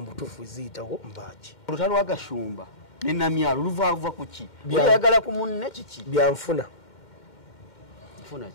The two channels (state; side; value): late; right; 2.1 ms